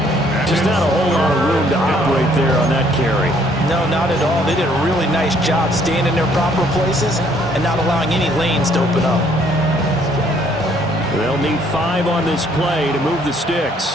Just not a whole lot of room to operate there on that carry. No, not at all. They did a really nice job staying in their proper places and not allowing any lanes to open up. They'll need 5 on this play to move the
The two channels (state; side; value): normal; both; correlation 0.64